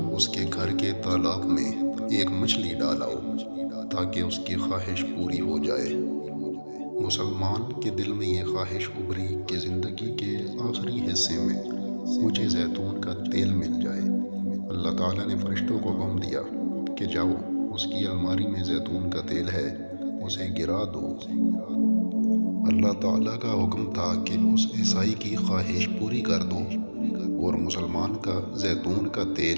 اس کے گھر کے تالاب میں ایک مچھلی ڈالاؤ تاکہ اس کی خواہش پوری ہو جائے۔ مسلمان کے دل میں یہ خواہش ابھری کہ زندگی کے آخری حصے میں مجھے زیتون کا تیل مل جائے۔ اللہ تعالیٰ نے فرشتوں کو حکم دیا کہ جاؤ اس کی الماری میں زیتون کا تیل ہے، اسے گرا دو۔ اللہ تعالیٰ کا حکم تھا کہ اس عیسائی کی خواہش پوری کر دو اور مسلمان کا زیتون کا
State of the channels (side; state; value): both; inverted; correlation -1.00